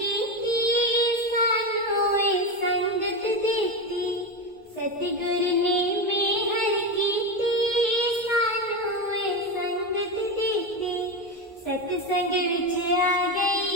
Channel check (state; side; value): normal; both; correlation 0.16